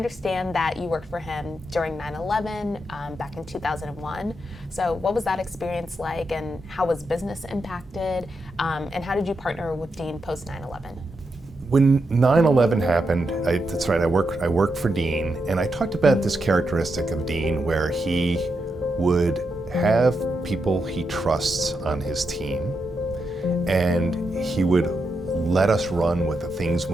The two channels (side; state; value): both; normal; correlation 0.84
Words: that you worked for him during 9/11 back in 2001. So what was that experience like, and how was business impacted? And how did you partner with Dean post 9/11? When 9/11 happened, that's right, I worked for Dean, and I talked about this characteristic of Dean where he would have people he trusts on his team, and he would let us run with the